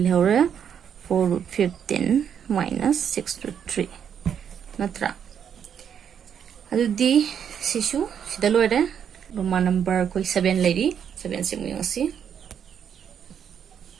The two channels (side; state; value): left; quieter; 8.2 dB